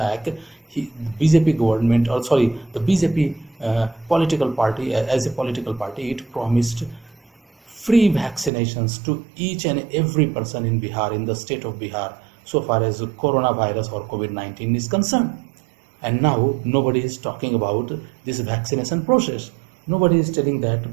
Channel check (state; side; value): drops out; left; at 8.5 s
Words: the BJP government, or sorry, the BJP political party, as a political party, it promised free vaccinations to each and every person in Bihar, in the state of Bihar, so far as coronavirus or COVID-19 is concerned. And now nobody is talking about this vaccination process. Nobody is telling that